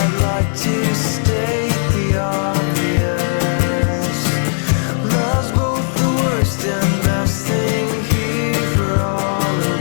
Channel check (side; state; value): right; silent; 58 dB below the other